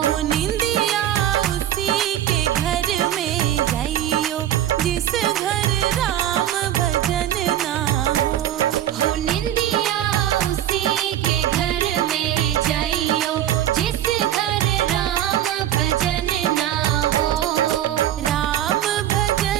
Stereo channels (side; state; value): left; quieter; 11.8 dB